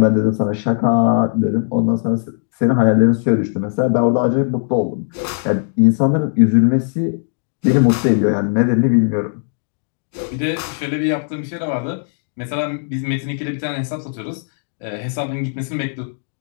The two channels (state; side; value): silent; right; digital silence